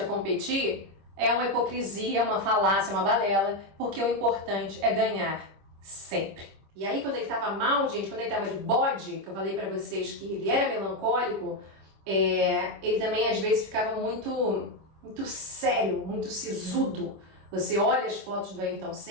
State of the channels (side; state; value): left; late; 26 ms